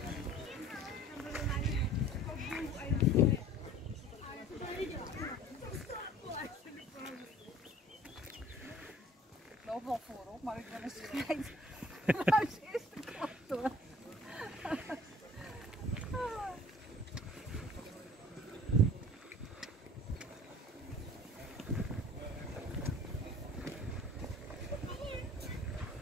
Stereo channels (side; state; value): both; normal; correlation 0.48